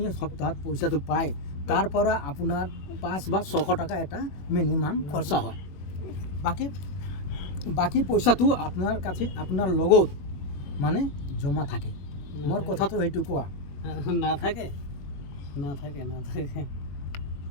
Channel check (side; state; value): right; late; 21 ms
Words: সপ্তাহত পইচাটো পায় তাৰ পৰা আপোনাৰ 5 বা 600 টকা এটা মিনিমাম খৰচা হয়। বাকী পইচাটো আপোনাৰ কাছে আপোনাৰ লগত মানে জমা থাকে। মোৰ কথাটো সেইটো কোৱা। নাথাকে নাথাকে নাথাকে।